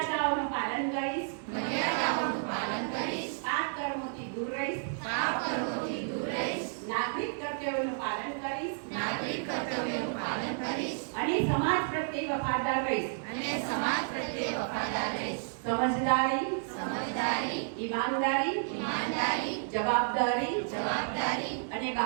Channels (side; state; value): left; silent; digital silence